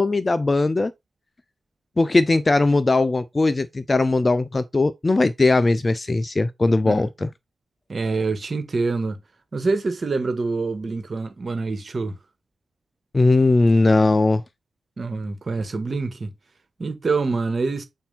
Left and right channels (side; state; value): both; normal; correlation 0.95